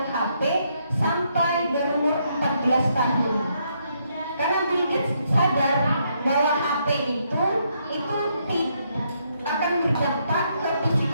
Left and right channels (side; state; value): both; inverted; correlation -0.75